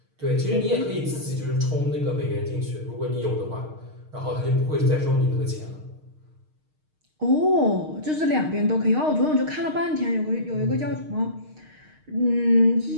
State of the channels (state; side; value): late; left; 6.5 ms